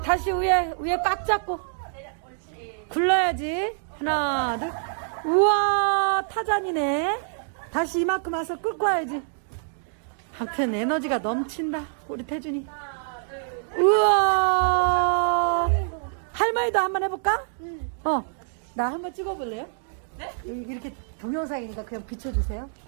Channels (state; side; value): silent; left; digital silence